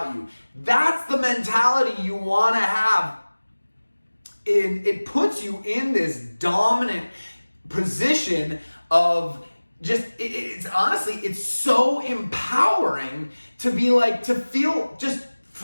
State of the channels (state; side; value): inverted; both; correlation -1.00